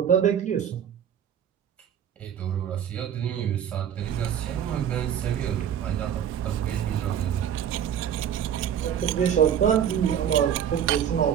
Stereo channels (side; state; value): left; quieter; 9.1 dB